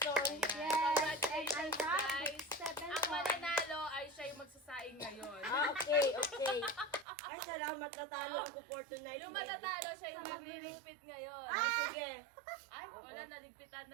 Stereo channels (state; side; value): drops out; left; at 7.1 s